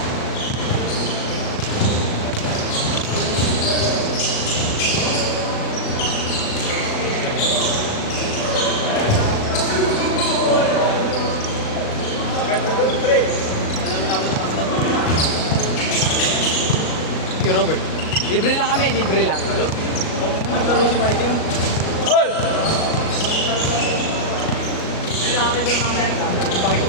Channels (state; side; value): late; right; 37 ms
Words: Hey, Robert. Libre lang kami, libre lang. Naglaro si Mikey yun. Hoy! Libre lang kami doon mamaya.